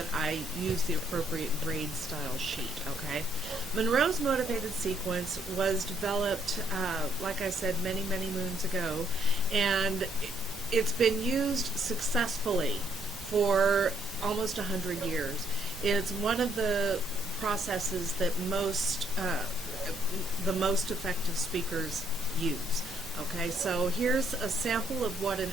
I use the appropriate grade style sheet, okay? Monroe's motivated sequence was developed, like I said, many, many moons ago, and it's been used successfully for almost 100 years. It's one of the processes that the most effective speakers use. Okay, so here's a sample of what an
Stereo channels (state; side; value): normal; both; correlation 0.69